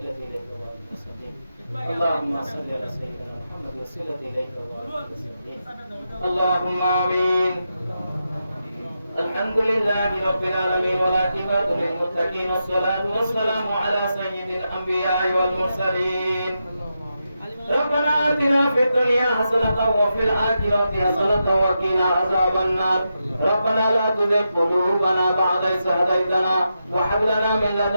إليك وبارك وسلم. اللهم صل على سيدنا محمد وسيلة إليك وبارك وسلم. اللهم آمين. الحمد لله رب العالمين والعاقبة للمتقين والصلاة والسلام على سيد الأنبياء والمرسلين. ربنا آتنا في الدنيا حسنة وفي الآخرة حسنة وقنا عذاب النار. ربنا لا تزغ قلوبنا بعد إذ هديتنا وهب لنا من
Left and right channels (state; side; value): inverted; both; correlation -0.87